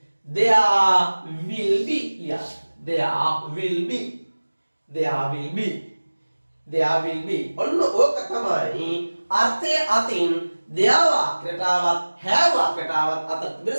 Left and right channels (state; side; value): inverted; both; correlation -1.00